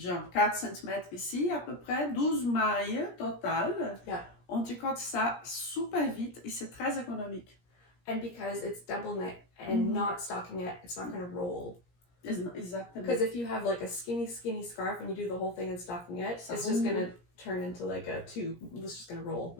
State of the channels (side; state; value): right; late; 17 ms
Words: 4 cm ici, à peu près, 12 mailles total. Yeah. On tricote ça super vite et c'est très économique. And because it's double knit and not stockinette, it's not going to roll. Exactly. Because if you have like a skinny scarf and you do the whole thing in stockinette, it's just going to turn into like a tube. It's just going to roll.